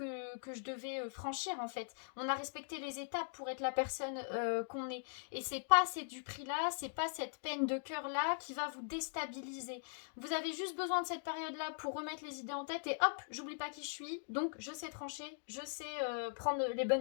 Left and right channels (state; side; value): silent; right; digital silence